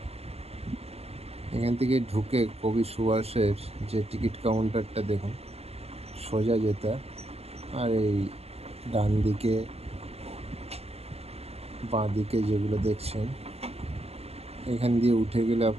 এখান থেকে ঢুকে কবি সুভাষের যে টিকিট কাউন্টারটা দেখুন, সোজা যেতে, আর এই ডান দিকে বাঁ দিকে যেগুলো দেখছেন, এখান দিয়ে উঠে গেলে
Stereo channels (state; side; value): late; left; 0.29 ms